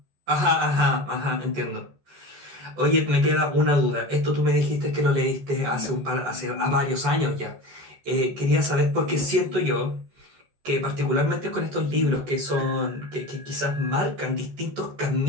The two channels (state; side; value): late; left; 14 ms